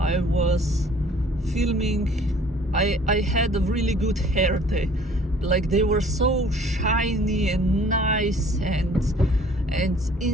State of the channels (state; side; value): normal; both; correlation 0.54